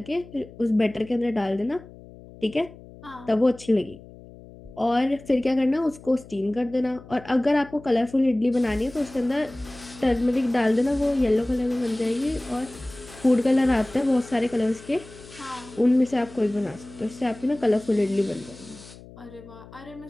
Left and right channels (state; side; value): noise; left; hum, 19 dB below the sound